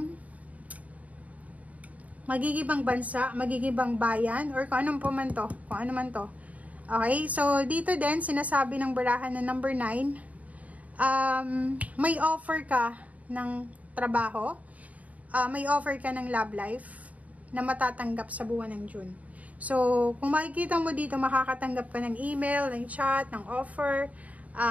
magigibang bansa, magigibang bayan, or kung anong man to. Okay, so dito din sinasabi ng barahan na number 9, may offer ka ng trabaho, may offer ka ng love life na matatanggap sa buwan ng June. So, kung makikita mo dito, makakatanggap ka ng email, ng chat, ng offer,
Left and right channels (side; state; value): left; late; 0.070 ms